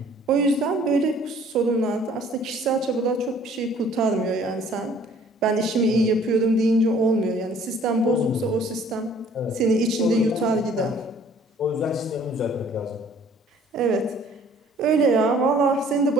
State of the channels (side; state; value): both; normal; correlation 0.56